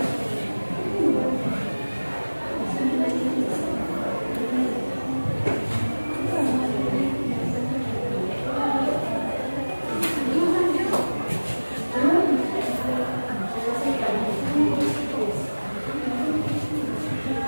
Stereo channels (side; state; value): both; inverted; correlation -1.00